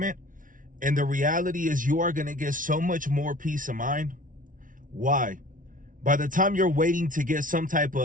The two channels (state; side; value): late; left; 0.38 ms